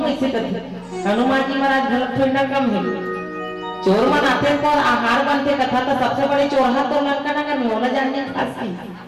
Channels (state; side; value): identical; both; correlation 1.00